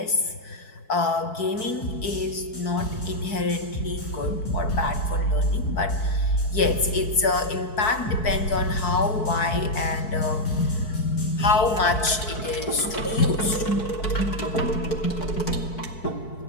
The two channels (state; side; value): late; right; 4.6 ms